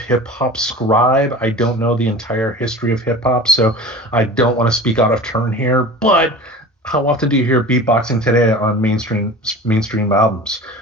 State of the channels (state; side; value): normal; both; correlation 0.36